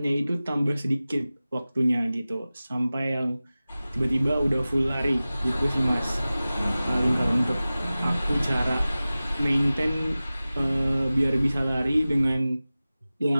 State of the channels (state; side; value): inverted; both; correlation -0.97